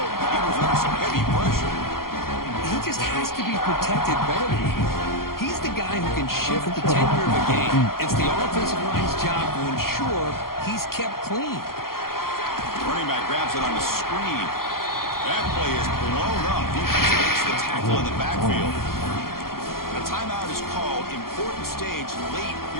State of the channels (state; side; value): late; right; 0.92 ms